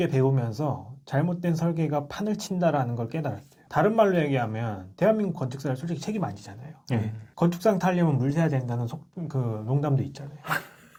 배우면서 잘못된 설계가 판을 친다라는 걸 깨달았어요. 다른 말로 얘기하면 대한민국 건축사를 솔직히 책임 안 지잖아요. 건축상 타려면 물 새야 된다는 농담도 있잖아요.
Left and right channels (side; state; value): both; identical; correlation 1.00